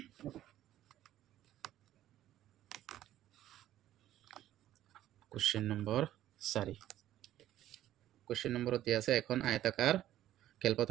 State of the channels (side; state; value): left; quieter; 13.0 dB